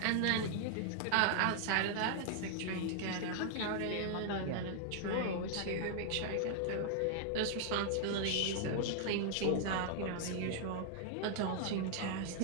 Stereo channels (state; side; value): different; both; correlation 0.00